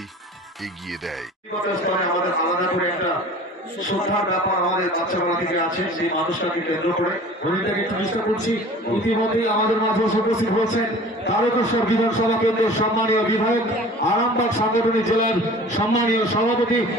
এগিয়ে দেয়। আমাদের আলাদা করে একটা শ্রদ্ধার ব্যাপার আমাদের বাচ্চাবেলা থেকে আছে, সেই মানুষটাকে কেন্দ্র করে হরিণটাকে একটু চেষ্টা করছি। ইতিমধ্যেই আমাদের মাঝে উপস্থিত হয়েছেন তারকেশ্বর বিধানসভা কেন্দ্রের সম্মানীয় বিধায়ক, আরামবাগ সাংগঠনিক জেলার সম্মানীয় সভাপতি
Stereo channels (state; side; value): normal; both; correlation 0.43